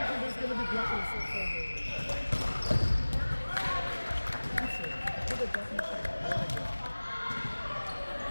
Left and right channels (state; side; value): inverted; both; correlation -1.00